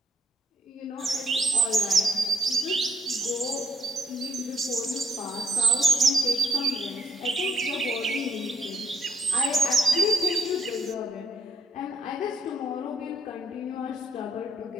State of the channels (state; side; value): normal; both; correlation 0.69